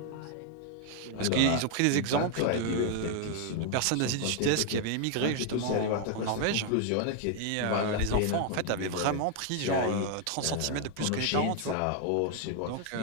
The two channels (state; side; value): different; both; correlation 0.00